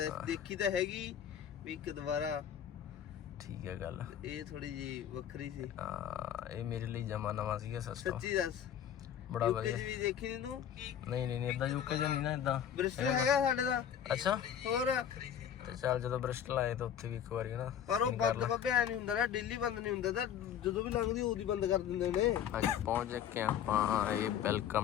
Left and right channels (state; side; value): quieter; right; 9.4 dB